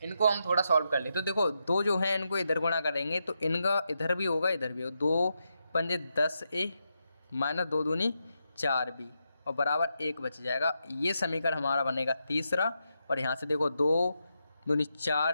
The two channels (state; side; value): inverted; both; correlation -0.85